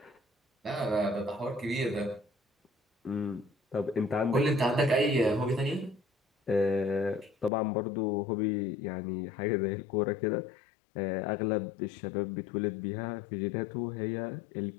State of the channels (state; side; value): drops out; right; at 7.5 s